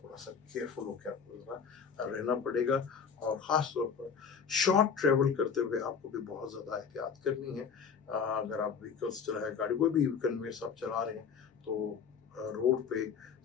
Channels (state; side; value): quieter; right; 6.5 dB